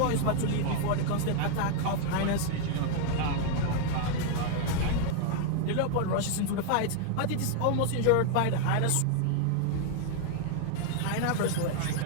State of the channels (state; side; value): different; both; correlation 0.00